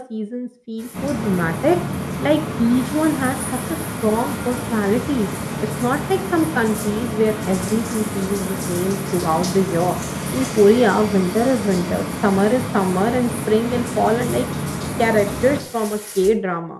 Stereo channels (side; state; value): both; identical; correlation 1.00